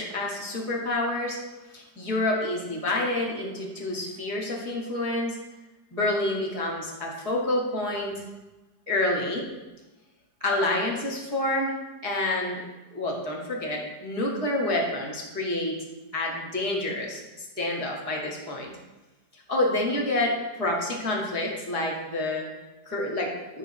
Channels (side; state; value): left; late; 4.7 ms